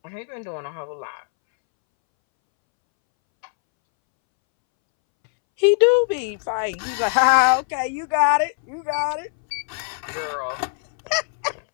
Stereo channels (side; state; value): right; silent; 64 dB below the other